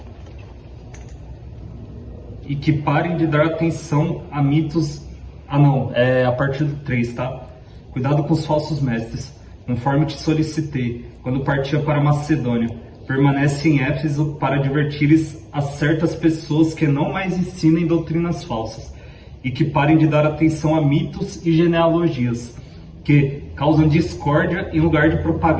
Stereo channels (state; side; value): identical; both; correlation 1.00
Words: E que parem de dar atenção a mitos... Ah não, é a partir do 3, tá? Cuidado com os falsos mestres, conforme te solicitei, quando partia para Macedônia. Permanece em Éfeso para advertires a certas pessoas que não mais ensinem doutrinas falsas, e que parem de dar atenção a mitos e genealogias, que causam discórdia em lugar de